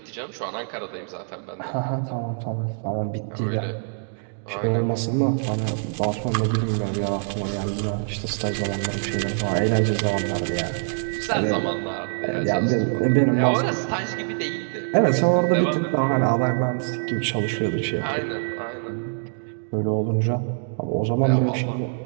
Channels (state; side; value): silent; left; digital silence